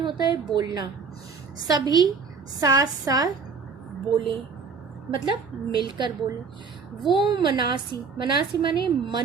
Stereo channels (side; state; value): left; quieter; 5.3 dB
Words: है बोलना, सभी साथ साथ बोले मतलब मिलकर बोले। वो मनासी, मनासी माने